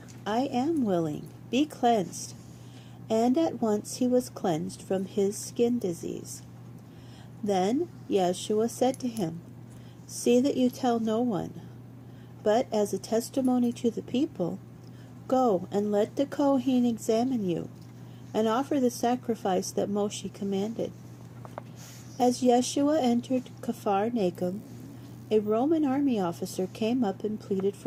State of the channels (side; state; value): both; identical; correlation 1.00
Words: "I am willing, be cleansed." And at once he was cleansed from his skin disease. Then Yeshua said to him, "See that you tell no one, but as a testimony to the people, go and let the Kohen examine you, and offer the sacrifice that Moshe commanded." As Yeshua entered Capharnaum, a Roman army officer came up and pleaded